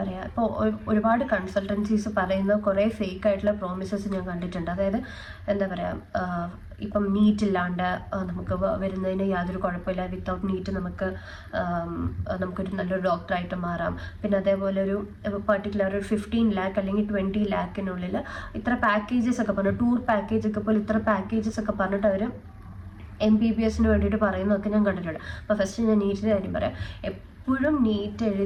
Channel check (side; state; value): both; identical; correlation 1.00